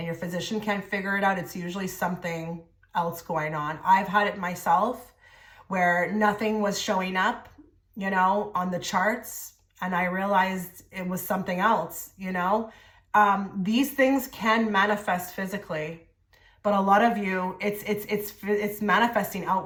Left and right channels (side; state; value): both; identical; correlation 1.00